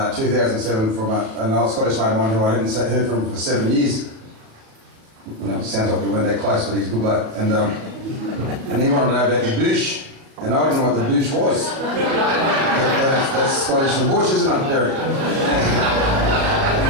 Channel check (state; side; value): late; left; 37 ms